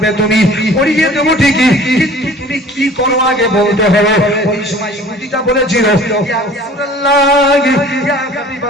তুমি, পড়িয়ে দেব ঠিকই, কিন্তু তুমি কি করো আগে বলতে হবে। ওই সময় ইহুদিটা বলেছিল ইয়া রাসূলুল্লাহ, ইয়া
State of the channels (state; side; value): normal; both; correlation 0.47